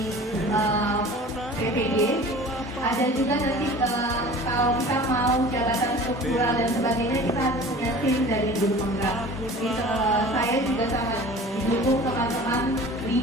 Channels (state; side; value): normal; both; correlation 0.42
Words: PPG, ada juga nanti kalau kita mau jabatan struktural dan sebagainya, kita harus punya tim dari guru penggerak. Jadi saya juga sangat didukung teman-teman